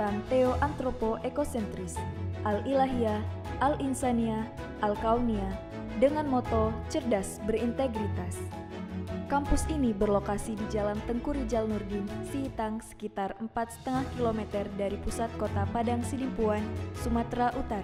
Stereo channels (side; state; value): both; identical; correlation 1.00